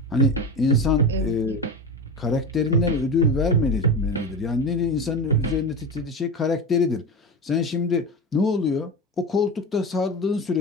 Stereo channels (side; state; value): both; normal; correlation 0.24